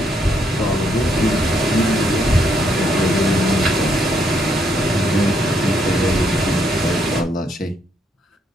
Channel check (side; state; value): both; normal; correlation 0.73